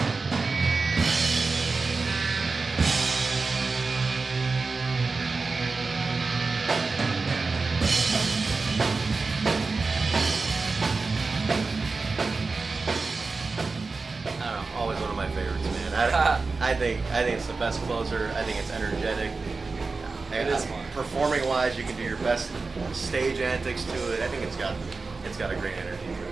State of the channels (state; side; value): quieter; left; 4.1 dB